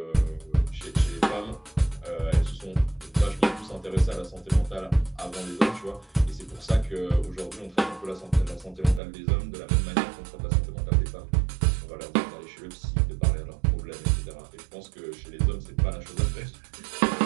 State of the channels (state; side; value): drops out; left; at 9.0 s